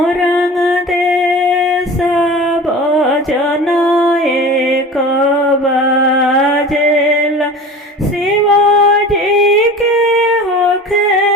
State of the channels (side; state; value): both; normal; correlation 0.36